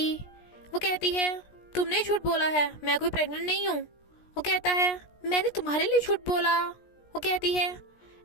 वो कहती है, तुमने झूठ बोला है, मैं कोई प्रेग्नेंट नहीं हूँ। वो कहता है, मैंने तुम्हारे लिए झूठ बोला। वो कहती है,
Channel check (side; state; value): right; late; 17 ms